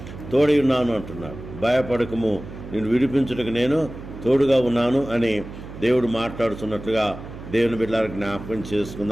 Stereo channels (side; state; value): right; noise; hum, 13 dB below the sound